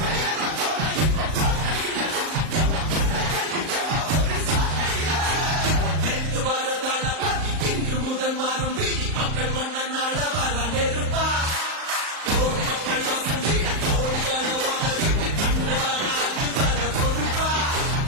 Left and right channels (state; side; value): late; left; 38 ms